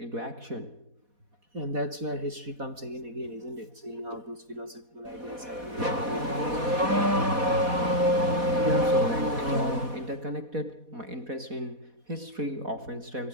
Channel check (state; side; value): late; left; 4.1 ms